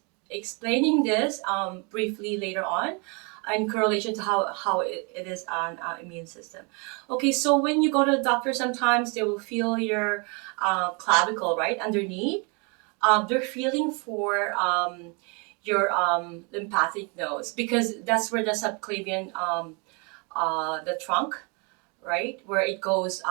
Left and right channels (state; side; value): quieter; left; 32.7 dB